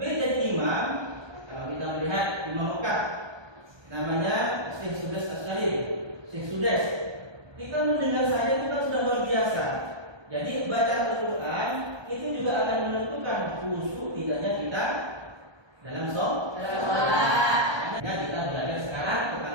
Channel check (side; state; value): left; late; 1.2 ms